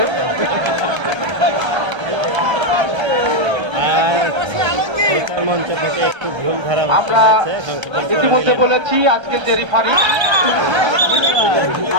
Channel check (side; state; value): left; late; 1.3 ms